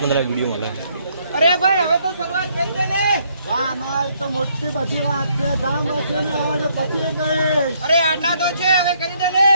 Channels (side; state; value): both; inverted; correlation -0.69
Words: માં વિડીયો માં અરે ભાઈ હવે તો શરૂઆત કરી દે ને. ના તો મોટી બધી વાત છે. ગામ છે ને આવે પછી કઈ. અરે આટલા તો છે, હવે કરી દે ને.